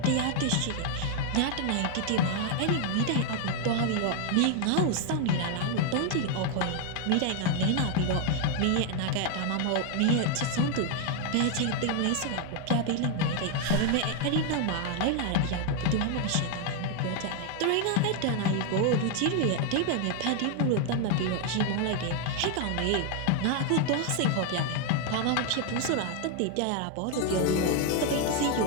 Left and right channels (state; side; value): different; both; correlation 0.01